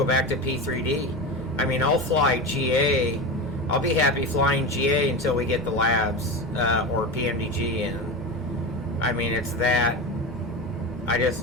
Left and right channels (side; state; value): both; normal; correlation 0.22